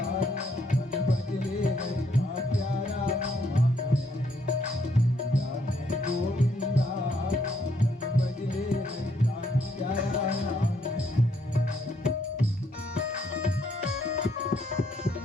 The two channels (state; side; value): normal; both; correlation 0.71